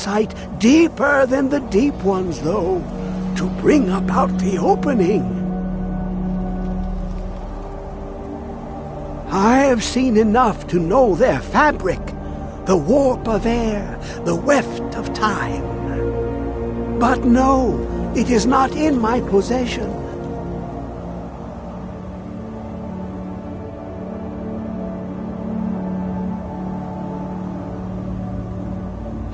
deeper than the deep ones, though, to bring about the opening. I have seen enough to know their fabric, the warp of air, the weft of time. But no, it is not in my possession.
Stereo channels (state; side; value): identical; both; correlation 1.00